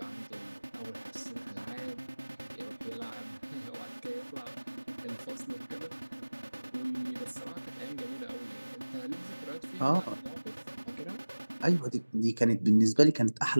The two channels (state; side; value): inverted; both; correlation -1.00